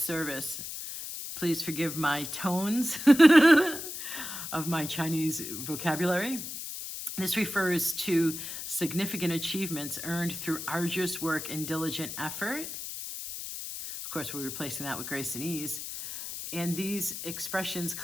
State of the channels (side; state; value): left; noise; hiss, 7 dB below the sound